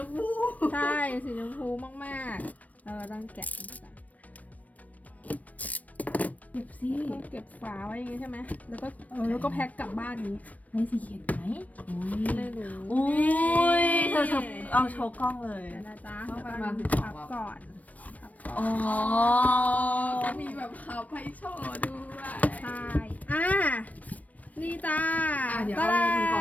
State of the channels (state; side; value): late; right; 0.071 ms